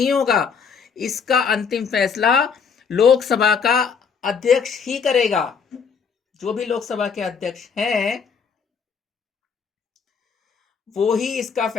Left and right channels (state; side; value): quieter; right; 6.1 dB